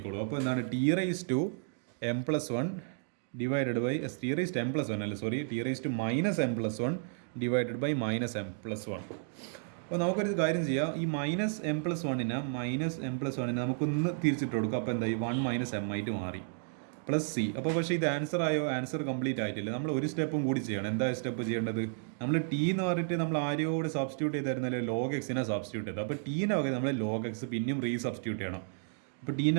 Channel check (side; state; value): left; silent; digital silence